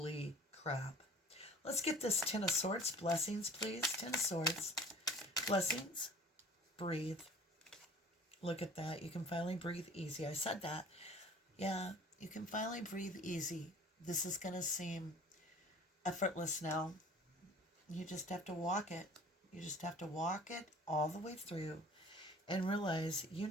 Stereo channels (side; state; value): both; normal; correlation 0.46